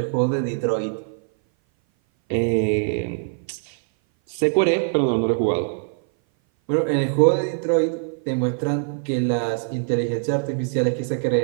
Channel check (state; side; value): silent; left; 58 dB below the other